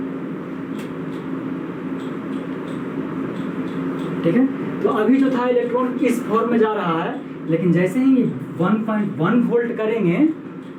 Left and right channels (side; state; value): both; identical; correlation 1.00